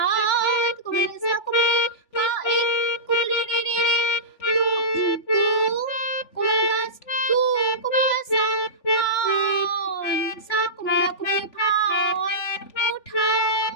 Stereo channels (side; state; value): right; late; 3.4 ms